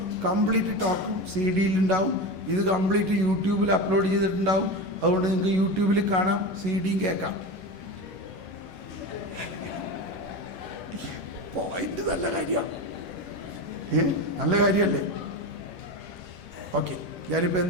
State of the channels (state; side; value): late; left; 11 ms